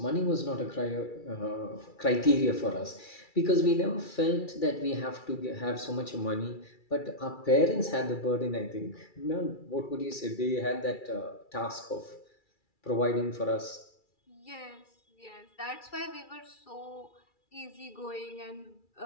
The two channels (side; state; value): right; late; 2.3 ms